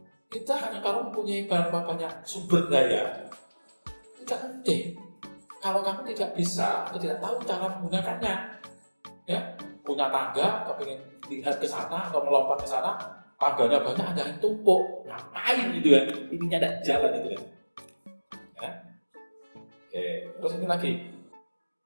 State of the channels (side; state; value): both; inverted; correlation -1.00